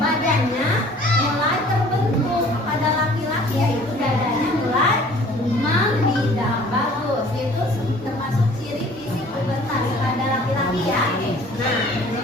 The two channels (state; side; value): normal; both; correlation 0.52